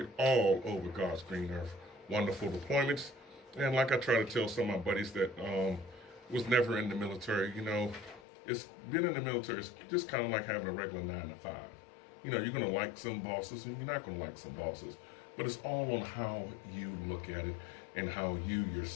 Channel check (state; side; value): drops out; right; at 8.2 s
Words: all over God's green earth. Wonderful deployments. And like I try to tell some of my buddies that was never in the military, it's been in the military, it's just kind of like having a regular 9 to 5. You're going to like some bosses and you're not going to like some bosses. But it's all on how you look at it and how you